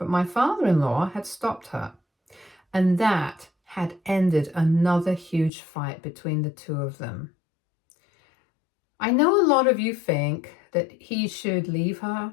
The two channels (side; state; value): right; drops out; at 5.5 s